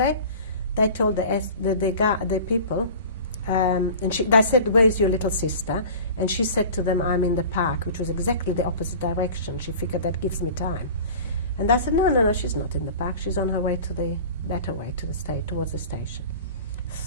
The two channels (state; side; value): inverted; both; correlation -0.40